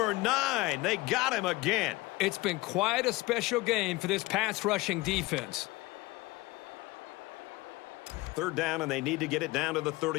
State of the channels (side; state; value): right; quieter; 21.0 dB